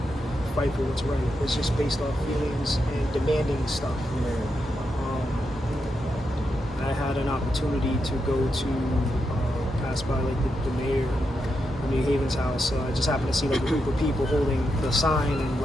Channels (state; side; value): normal; both; correlation 0.85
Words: fight for what's right. It's just based off feelings and demanding stuff. I had an opportunity to go to pass by like the mayor of New Haven's house. I just happened to see like a group of people holding the sign and